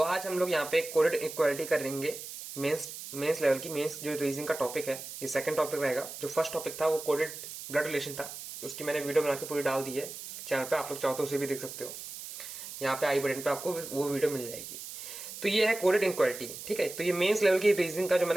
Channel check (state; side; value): noise; right; hiss, 10 dB below the sound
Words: आज हम लोग यहाँ पे कोडेड इक्वालिटी करेंगे। मेंस लेवल की मेंस जो रीजनिंग का टॉपिक है, ये सेकंड टॉपिक रहेगा। जो फर्स्ट टॉपिक था वो कोडेड ब्लड रिलेशन था, उसकी मैंने वीडियो बना के पूरी डाल दी है चैनल पे। आप लोग चाहो तो उसे भी देख सकते हो। यहाँ पे आई बटन पे आपको वो वीडियो मिल जाएगी। तो ये है कोडेड इक्वालिटी, ठीक है। तो ये मेंस लेवल की रीजनिंग का जो